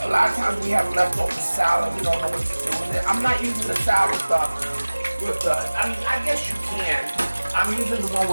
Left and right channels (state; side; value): inverted; both; correlation -1.00